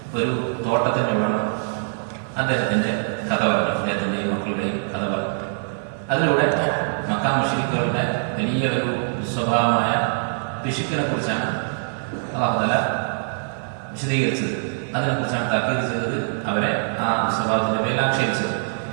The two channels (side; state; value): left; silent; digital silence